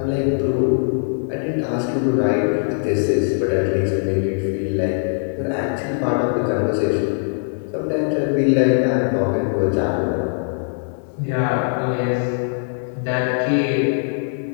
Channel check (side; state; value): right; silent; digital silence